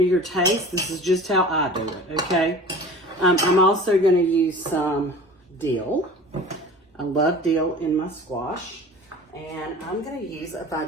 your taste. This is just how I do it, okay? I'm also going to use some dill. I love dill in my squash. And I'm going to use a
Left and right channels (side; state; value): both; normal; correlation 0.41